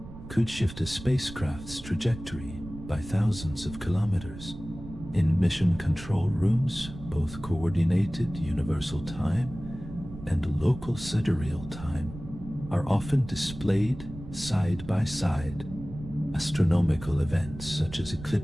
could shift a spacecraft's trajectory by thousands of kilometers. In mission control rooms, both coordinated universal time and local sidereal time are often displayed side by side. Astronomical events such as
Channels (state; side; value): noise; right; rumble, 13 dB below the sound